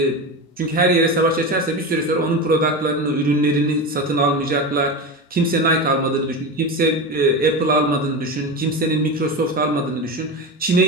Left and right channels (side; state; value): both; normal; correlation 0.22